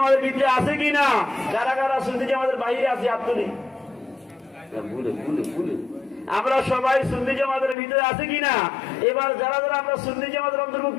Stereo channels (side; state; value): right; drops out; at 7.8 s